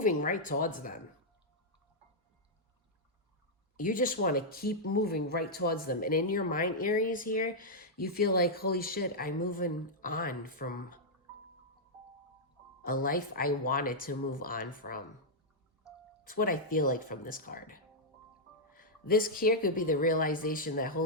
right towards them. You just want to keep moving right towards them. And in your mind, Aries, here, you feel like, holy shit, I'm moving on from a life I wanted to move on from. It's what I feel like from this card. This here could be the realization that,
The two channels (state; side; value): normal; both; correlation -0.07